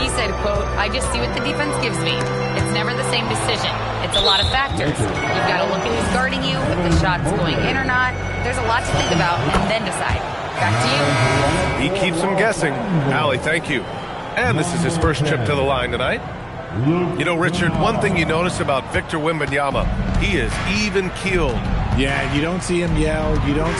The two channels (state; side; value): identical; both; correlation 1.00